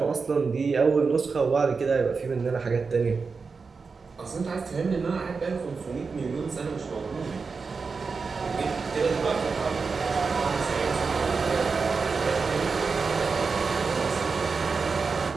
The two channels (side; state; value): left; quieter; 4.8 dB